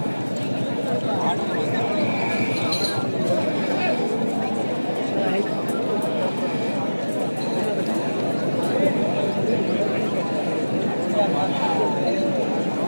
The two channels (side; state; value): both; inverted; correlation -1.00